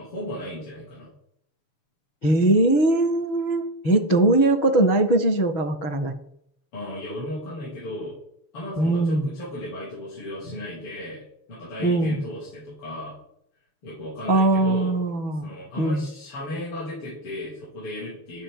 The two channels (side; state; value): right; late; 6.8 ms